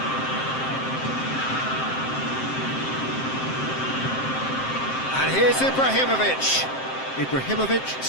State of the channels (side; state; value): right; late; 7.6 ms